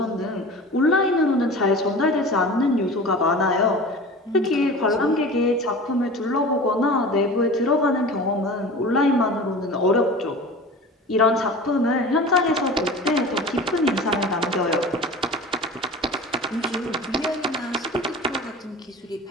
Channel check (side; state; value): both; normal; correlation 0.36